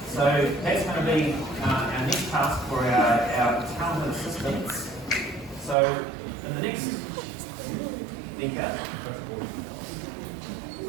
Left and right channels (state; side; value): drops out; left; at 5.8 s